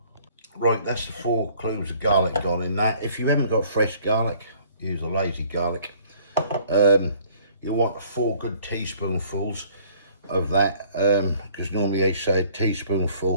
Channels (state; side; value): inverted; both; correlation -0.57